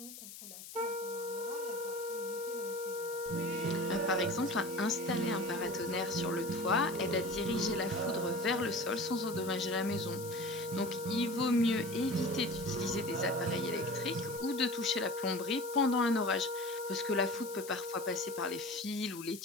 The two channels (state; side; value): noise; left; hiss, 13 dB below the sound